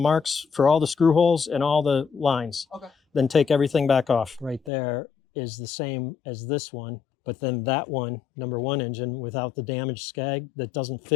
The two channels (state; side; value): drops out; right; at 4.7 s